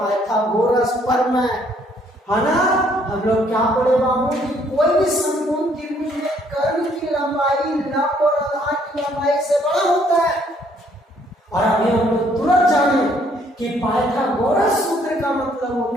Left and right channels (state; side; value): normal; both; correlation 0.66